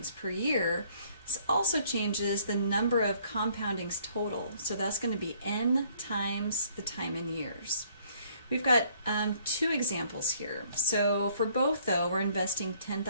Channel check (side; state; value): both; inverted; correlation -0.62